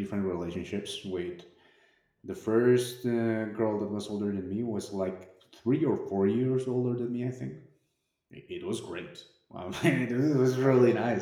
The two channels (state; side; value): identical; both; correlation 1.00